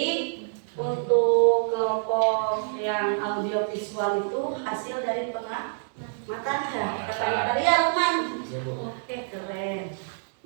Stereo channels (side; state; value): left; silent; digital silence